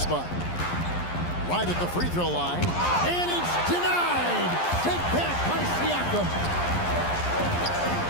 Right at the free throw line, and it's denied. Sent back by Siakam.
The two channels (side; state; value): right; late; 11 ms